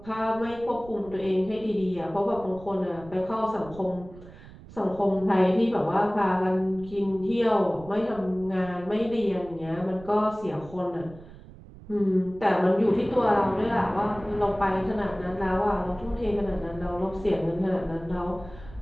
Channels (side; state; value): right; noise; rumble, 18 dB below the sound